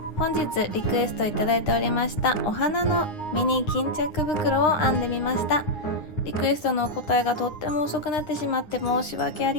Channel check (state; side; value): late; right; 9.7 ms